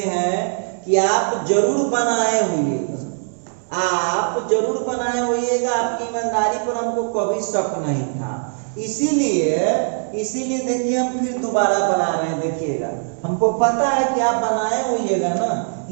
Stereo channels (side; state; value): left; silent; digital silence